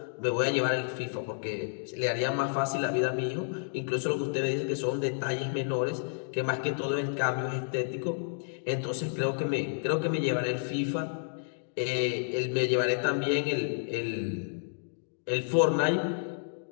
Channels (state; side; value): silent; right; digital silence